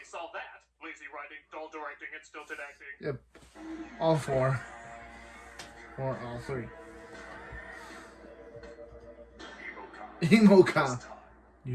solved that. Lazy writing, dull directing, and stilted acting. Yep. All 4. Or all 3. Emo cop.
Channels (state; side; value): identical; both; correlation 1.00